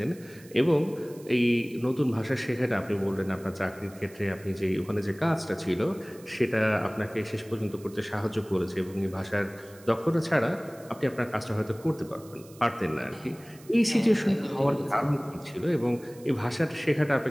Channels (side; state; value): right; noise; hiss, 23 dB below the sound